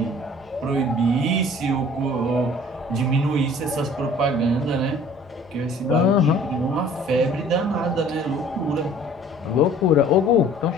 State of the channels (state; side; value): normal; both; correlation 0.51